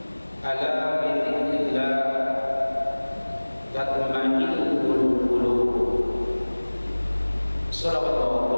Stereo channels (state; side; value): inverted; both; correlation -1.00